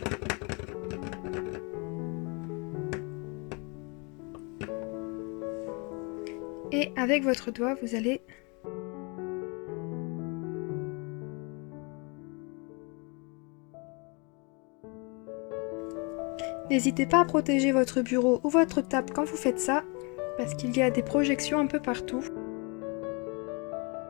Et avec votre doigt, vous allez n'hésitez pas à protéger votre bureau ou votre table quand vous faites ça, parce qu'il y a des projections un peu partout.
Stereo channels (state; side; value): quieter; right; 32.0 dB